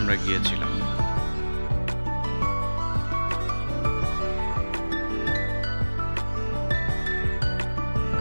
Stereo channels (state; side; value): inverted; both; correlation -1.00